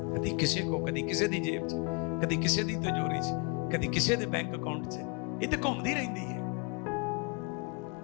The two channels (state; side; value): quieter; right; 34.5 dB